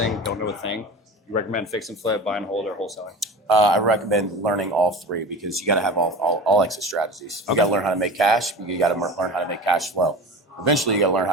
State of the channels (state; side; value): normal; both; correlation 0.33